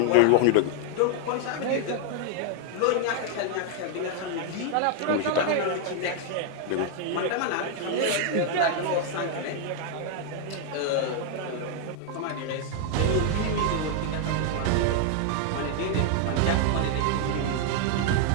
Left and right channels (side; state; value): both; different; correlation 0.01